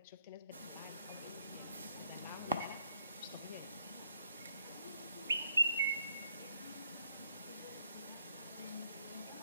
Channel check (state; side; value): inverted; both; correlation -0.74